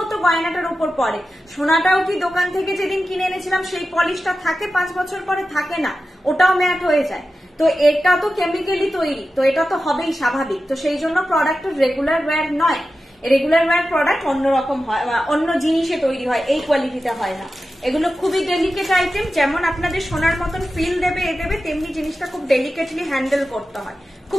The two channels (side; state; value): both; normal; correlation 0.93